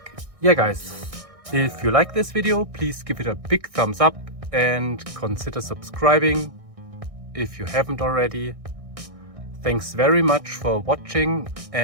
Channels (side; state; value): left; late; 1.6 ms